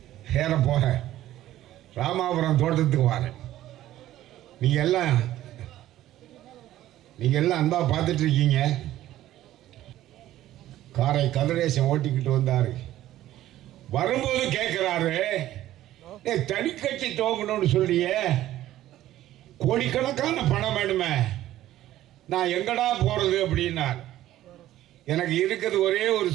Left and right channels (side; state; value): left; quieter; 13.9 dB